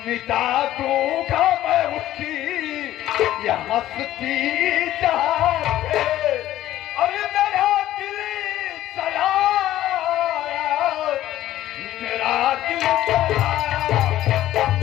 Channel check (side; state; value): right; quieter; 13.7 dB